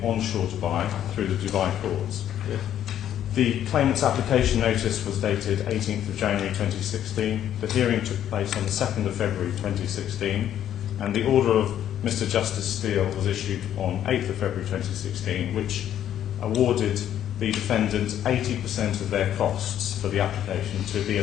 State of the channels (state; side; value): quieter; right; 10.8 dB